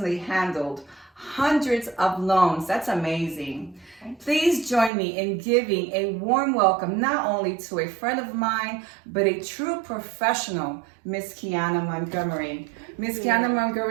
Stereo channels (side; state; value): left; drops out; at 4.9 s